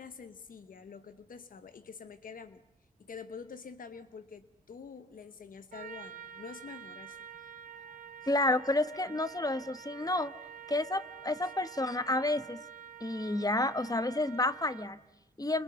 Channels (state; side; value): normal; both; correlation 0.50